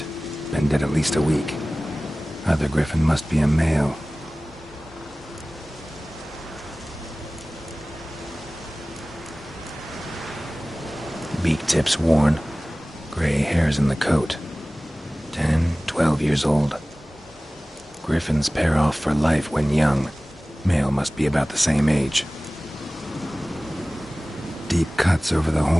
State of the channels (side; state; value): both; normal; correlation 0.98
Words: Been dead at least a week. Other griffin must be a male. Beak tips worn. Gray hairs in the coat. 10, 12 years old. Griffins pair off for life when young. Male must be about the same age. Deep cuts over the